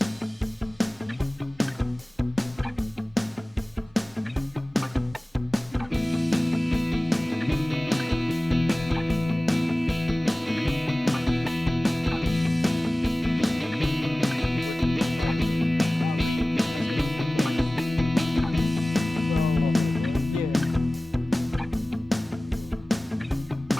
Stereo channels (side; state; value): both; normal; correlation 0.98